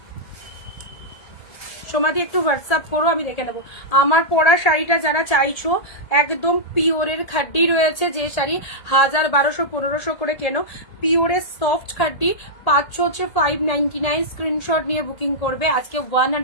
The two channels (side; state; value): right; late; 1.8 ms